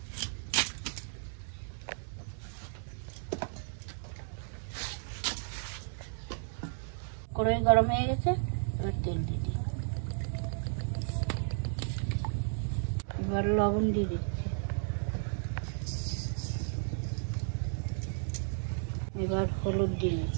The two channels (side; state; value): left; silent; 55 dB below the other